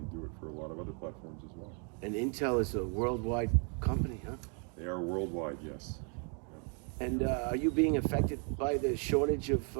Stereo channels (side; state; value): left; quieter; 39.1 dB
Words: do it for a lot of other platforms as well. And Intel is a worldwide company, huh? They are worldwide, yes. Yeah. And are you being affected by the shortage of